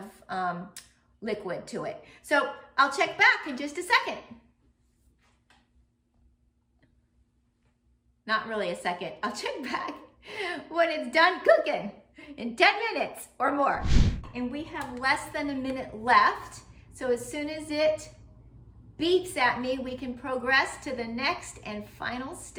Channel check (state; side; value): identical; both; correlation 1.00